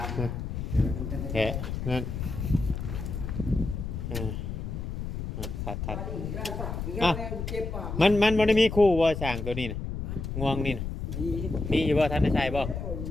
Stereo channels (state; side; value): noise; left; rumble, 5 dB below the sound